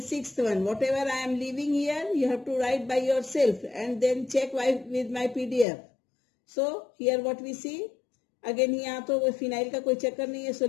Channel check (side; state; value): right; drops out; at 5.7 s